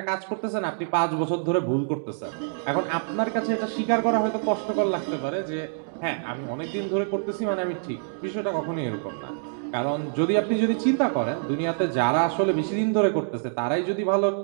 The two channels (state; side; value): silent; left; digital silence